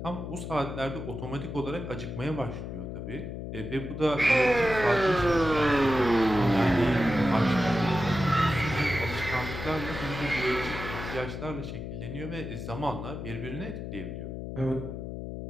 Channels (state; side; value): noise; left; hum, 7 dB below the sound